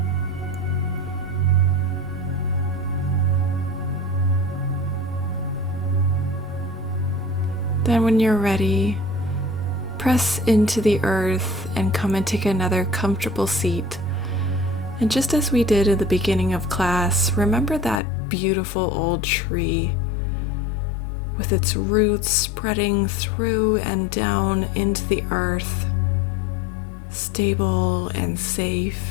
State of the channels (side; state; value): right; drops out; at 18.0 s